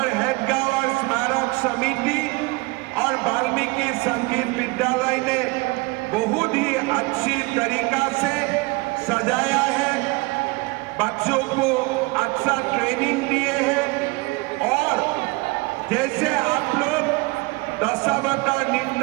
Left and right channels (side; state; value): left; quieter; 25.4 dB